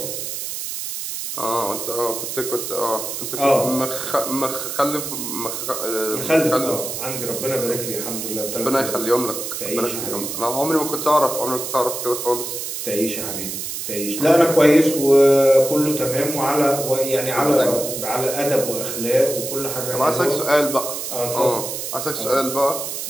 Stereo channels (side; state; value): right; noise; hiss, 5 dB below the sound